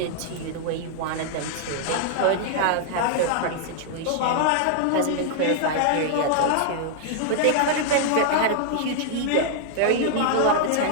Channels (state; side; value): different; both; correlation -0.01